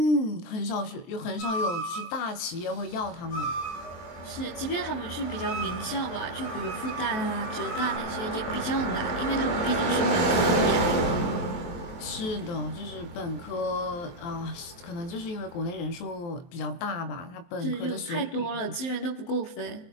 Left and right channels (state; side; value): late; right; 23 ms